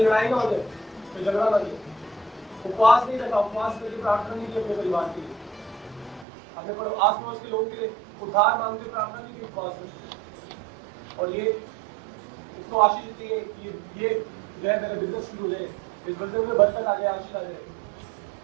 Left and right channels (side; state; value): left; drops out; at 6.2 s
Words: लड़ाई ना हो जाए, कोई झगड़ा ना हो। उपवास नहीं रखा, उपवास करके प्रार्थना नहीं की अपने परिवार के लिए, अपने आस पड़ोस के लोगों के लिए उद्धार मांगते प्रार्थना नहीं की उपवास में। और ये इसको आशीष देती है कि ये जो है मेरा बिजनेस शुरू हो जाए, इस बिजनेस में बरकत आ जाए, आशीष आ जाए,